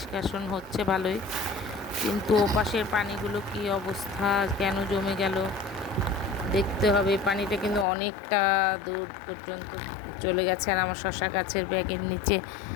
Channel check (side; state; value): right; drops out; at 7.9 s